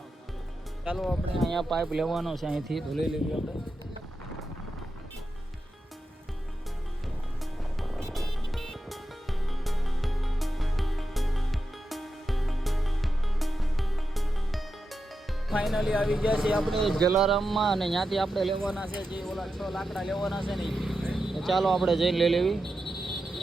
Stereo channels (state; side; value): normal; both; correlation 0.89